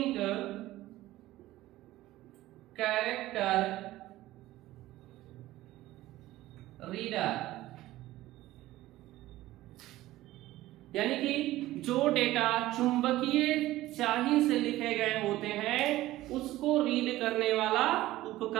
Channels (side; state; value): left; quieter; 16.2 dB